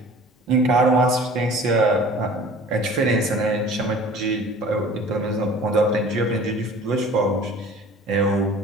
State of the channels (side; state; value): both; normal; correlation 0.46